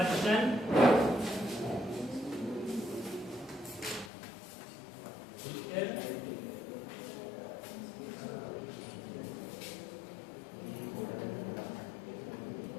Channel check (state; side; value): drops out; right; at 4.1 s